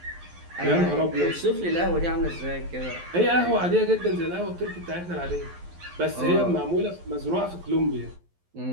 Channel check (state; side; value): late; left; 11 ms